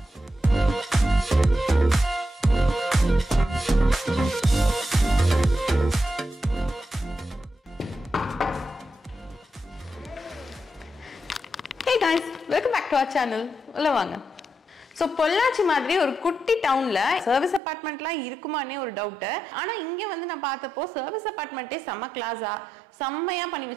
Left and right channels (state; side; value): drops out; left; at 17.6 s